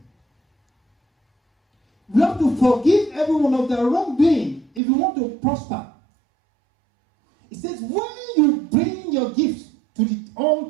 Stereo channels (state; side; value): drops out; left; at 4.8 s